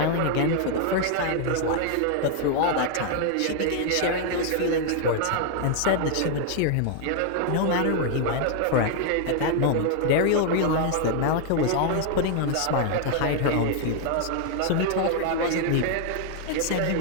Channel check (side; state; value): both; different; correlation 0.00